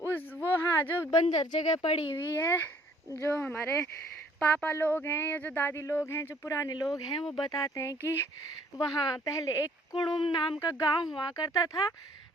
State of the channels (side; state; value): both; normal; correlation 0.60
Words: वो हाँ, जो बंजर जगह पड़ी हुई है, जो हमारे पापा लोग हैं या जो दादी लोग हैं, जो पुराने लोग हैं, वो बताते हैं कि वहाँ पहले एक कुड़ुम नाम का गांव हुआ करता था।